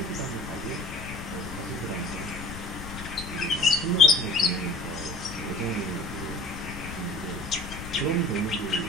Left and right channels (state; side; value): noise; left; rumble, 10 dB below the sound